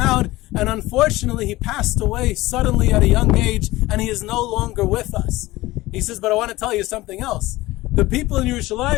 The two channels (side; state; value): right; quieter; 18.6 dB